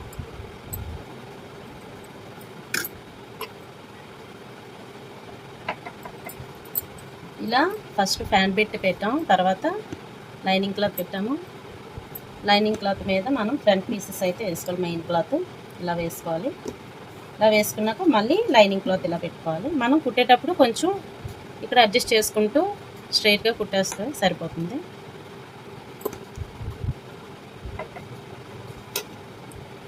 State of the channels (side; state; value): both; identical; correlation 1.00